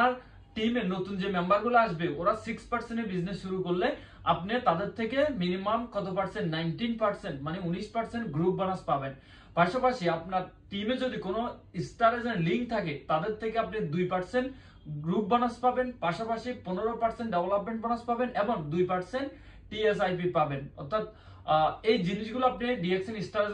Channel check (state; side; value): identical; both; correlation 1.00